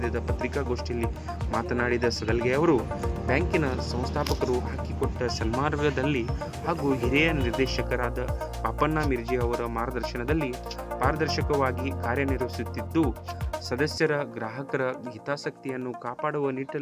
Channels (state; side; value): identical; both; correlation 1.00